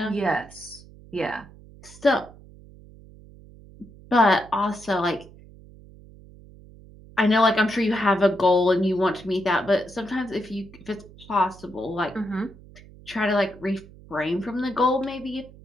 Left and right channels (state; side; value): noise; right; hum, 21 dB below the sound